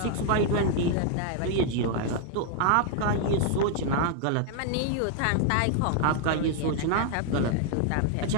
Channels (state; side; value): different; both; correlation 0.00